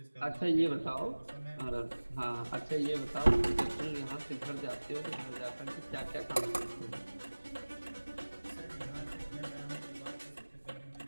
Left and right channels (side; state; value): both; inverted; correlation -1.00